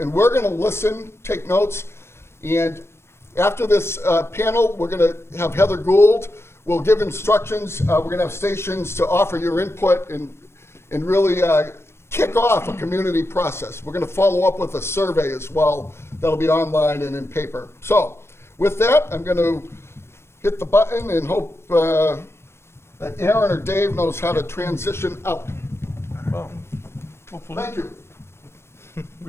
we're gonna listen, take notes, and after this panel, we're gonna have Heather Gould. We'll give instructions. We're going to have stations to offer your input and really kick off a community process. We're going to follow up with a survey as well. That'll be online and in paper. So with that, I'm going to hit the button and hope that Aaron or Dave knows how to transition out. Well, hopefully. Thank you.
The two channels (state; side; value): late; right; 0.12 ms